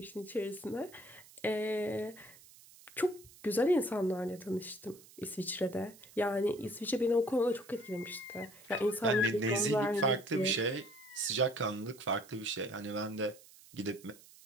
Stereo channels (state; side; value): noise; right; hiss, 22 dB below the sound